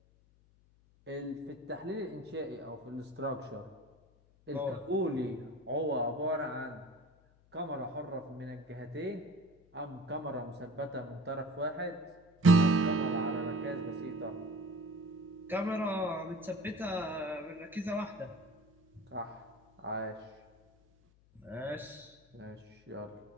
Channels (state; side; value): noise; left; hum, 29 dB below the sound